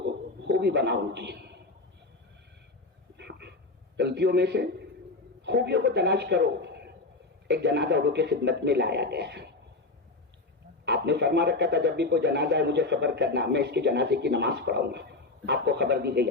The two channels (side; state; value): right; quieter; 3.4 dB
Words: خوبی بناؤ. ان کی غلطیوں میں سے خوبیوں کو تلاش کرو. ایک جنازہ اردو کی خدمت میں لایا گیا، آپ نے فرما رکھا تھا جب بھی کوئی جنازہ ہے مجھے خبر کرنا، میں اس کے جنازے کی نماز پڑھاؤں گا. آپ کو خبر دی گئی،